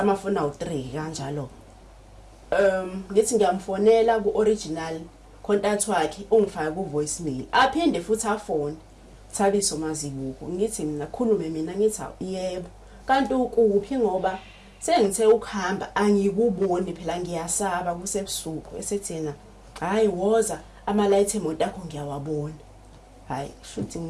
awu3 kanjalo ngithi ngiyamfonela ku original contact wakhe ungifaka ku voicemail aphinde futhi afone Thabiso Mazibuko ngithi mina khulume mina ngithi yebo kanti ukuphi ngoba sengithe ukuhamba angikuboni phela ngiyasaba kusebusuku esethena hayi woza ama light emoto akho ngiyawabona hayi shuthi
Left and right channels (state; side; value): identical; both; correlation 1.00